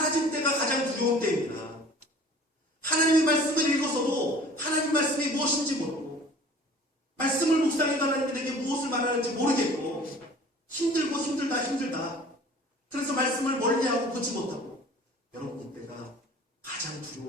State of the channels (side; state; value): both; normal; correlation 0.47